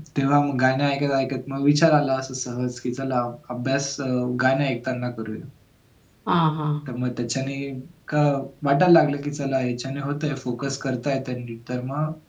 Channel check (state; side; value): identical; both; correlation 1.00